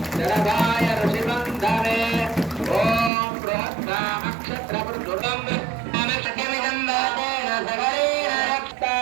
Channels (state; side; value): drops out; left; at 3.1 s